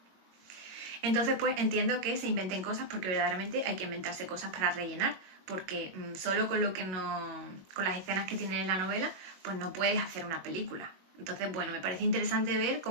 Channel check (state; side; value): late; left; 22 ms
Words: Entonces pues entiendo que se inventen cosas porque verdaderamente hay que inventarse cosas para rellenar, porque solo con con las escenas que tienen en la novela pues no puedes hacer una película. Entonces bueno, me parece interesante ver